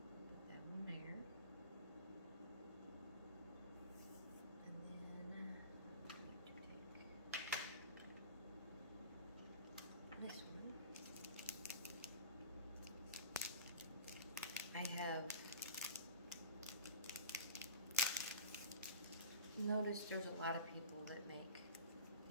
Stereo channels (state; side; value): inverted; both; correlation -0.35